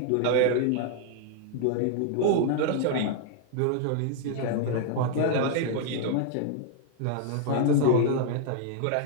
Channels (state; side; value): different; both; correlation 0.00